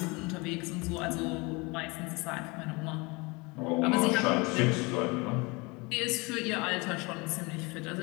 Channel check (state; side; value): quieter; right; 26.8 dB